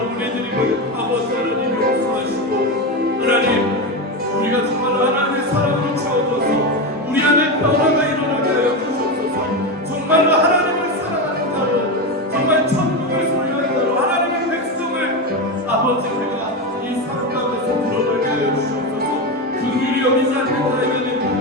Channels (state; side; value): normal; both; correlation 0.16